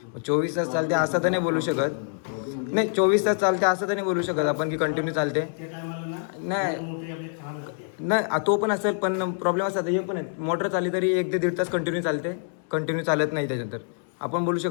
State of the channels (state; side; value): silent; right; 61 dB below the other